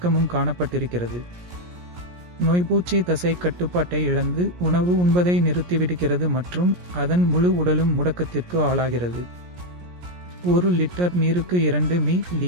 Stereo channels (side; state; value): left; late; 17 ms